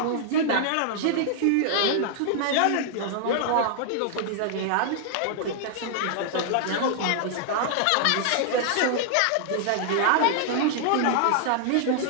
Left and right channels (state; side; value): different; both; correlation -0.01